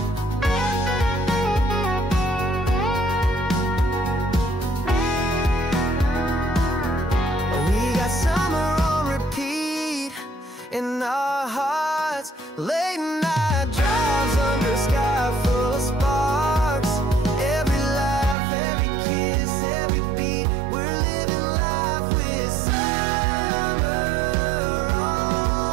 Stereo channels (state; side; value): drops out; left; at 18.4 s